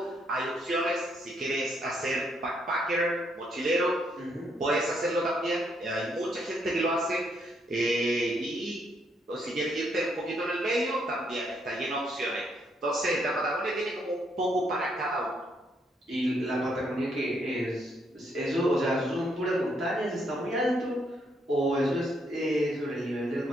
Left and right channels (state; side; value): normal; both; correlation 0.74